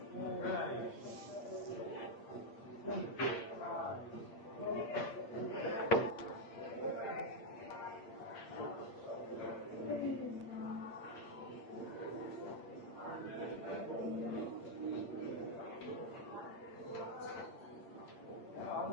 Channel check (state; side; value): late; right; 8.7 ms